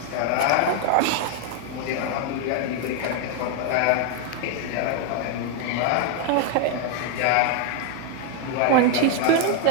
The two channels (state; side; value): different; both; correlation 0.01